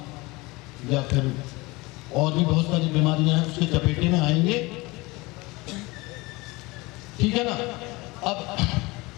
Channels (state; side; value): quieter; right; 23.2 dB